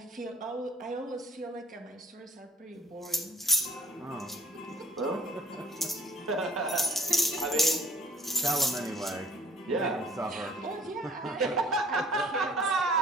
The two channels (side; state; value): both; normal; correlation 0.57